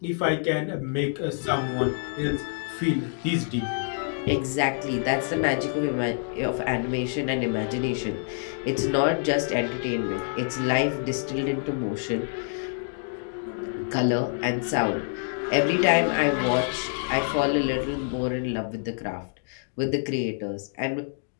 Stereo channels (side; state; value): right; silent; digital silence